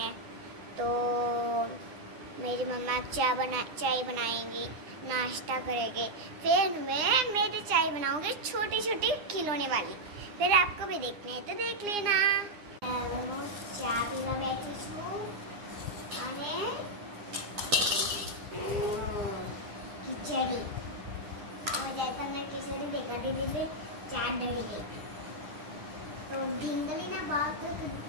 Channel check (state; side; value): late; left; 9.9 ms